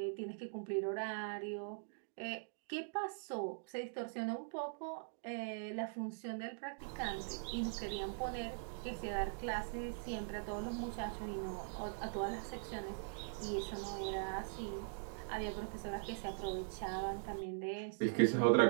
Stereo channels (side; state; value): left; silent; digital silence